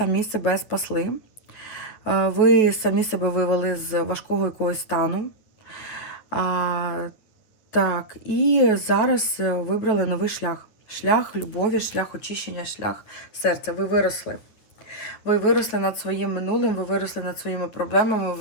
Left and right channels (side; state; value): right; late; 9.7 ms